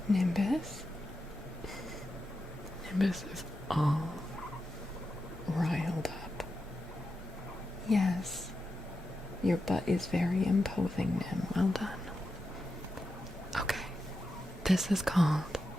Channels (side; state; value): both; normal; correlation 0.89